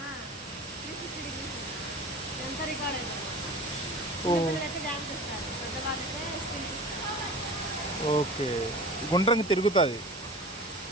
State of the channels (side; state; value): both; normal; correlation 0.37